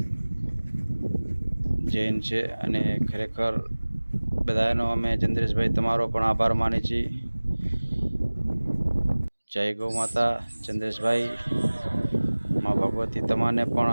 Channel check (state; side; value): inverted; both; correlation -1.00